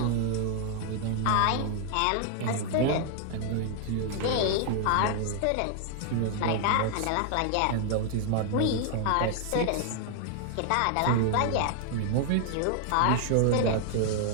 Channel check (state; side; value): different; both; correlation 0.00